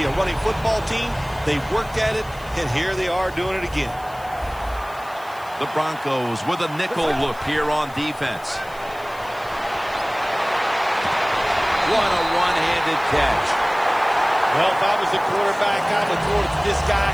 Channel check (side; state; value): left; noise; hiss, 23 dB below the sound